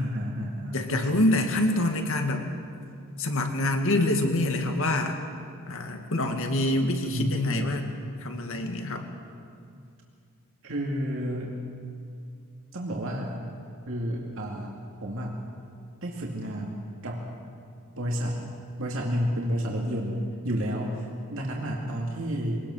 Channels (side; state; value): both; normal; correlation 0.57